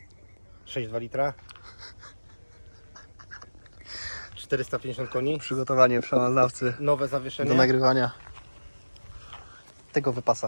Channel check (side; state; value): both; inverted; correlation -1.00